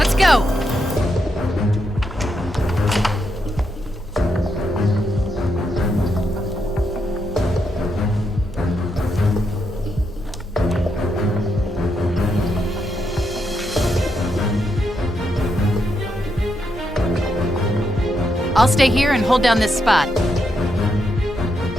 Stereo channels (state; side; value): normal; both; correlation 0.81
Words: go. I'll stay here and hold down this spot.